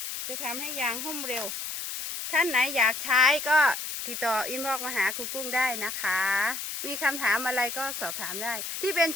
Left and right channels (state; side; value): noise; left; hiss, 6 dB below the sound